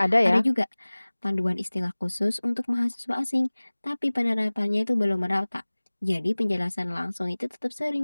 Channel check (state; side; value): inverted; both; correlation -1.00